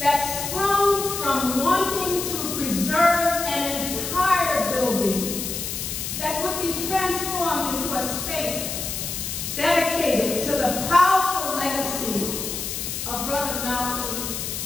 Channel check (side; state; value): left; noise; hiss, 4 dB below the sound